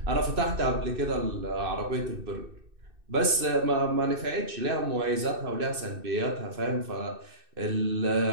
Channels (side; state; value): left; late; 2.6 ms